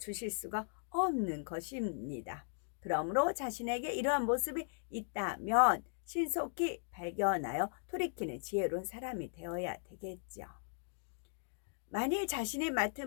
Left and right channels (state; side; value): silent; right; digital silence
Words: 수가 없는 것입니다. 그러므로 자신에게 이러한 모습이 있다면 신속히 발견하여 돌이키는 지혜로운 사람이 되어야 되겠죠. 만일 자신이